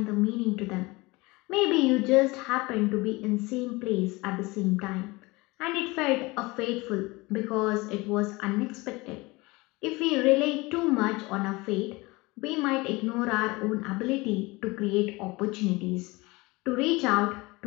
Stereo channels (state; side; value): quieter; right; 23.2 dB